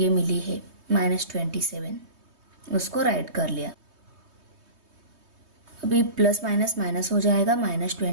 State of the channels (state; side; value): late; left; 3.2 ms